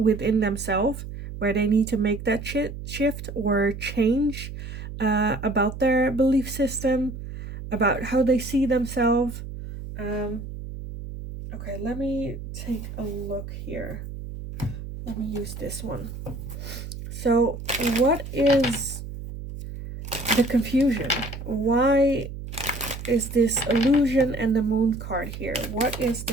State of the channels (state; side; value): noise; right; hum, 9 dB below the sound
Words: themselves, where they need to make that shift or change about their belief system, about how they see themselves. Okay, let me take a look here. Let me use this one. So, what is the confusion? Why is this illusion and the moon card here? What is